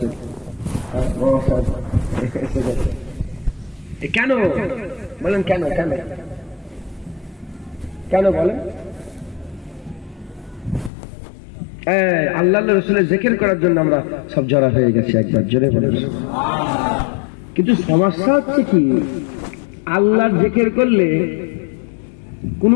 এসে গেছে কেন বলেন? কেন কেন কেন বলেন? আল্লাহ রসুলের জিকির করার জন্য আমরা সব জড়া হয়ে গেছি। একবার জোরে বলেন। কিন্তু সমস্যা হচ্ছে কি, আল্লাহর জিকির করলে কোনো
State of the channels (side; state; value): right; drops out; at 10.9 s